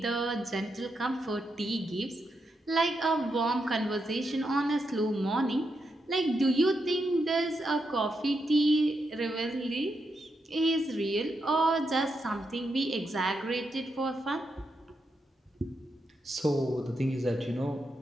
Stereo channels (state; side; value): normal; both; correlation 0.83